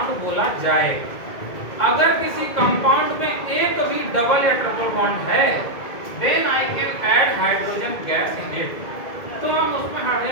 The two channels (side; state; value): right; late; 2.1 ms